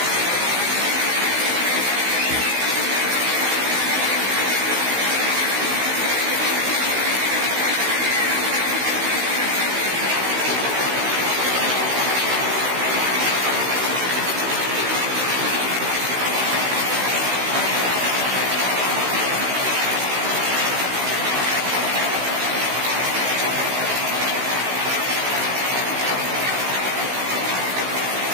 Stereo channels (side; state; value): left; late; 16 ms